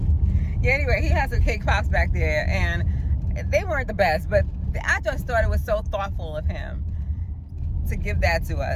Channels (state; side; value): identical; both; correlation 1.00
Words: Yeah, anyway, he has some cake pops back there, and they weren't the best, but I just thought it was so thoughtful of him to give that to